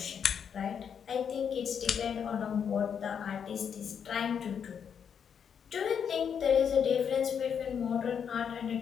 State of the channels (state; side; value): quieter; right; 7.5 dB